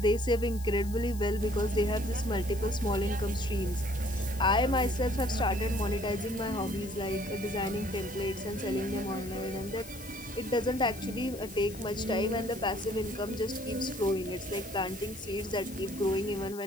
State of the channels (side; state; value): left; noise; hiss, 16 dB below the sound